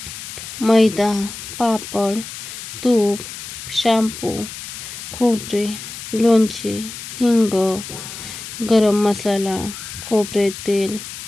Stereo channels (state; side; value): noise; left; hiss, 10 dB below the sound